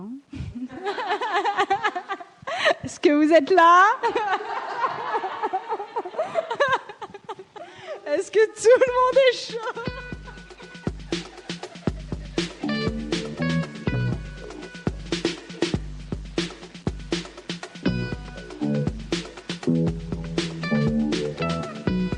Est-ce que vous êtes là? Est-ce que tout le monde est chaud?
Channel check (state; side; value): identical; both; correlation 1.00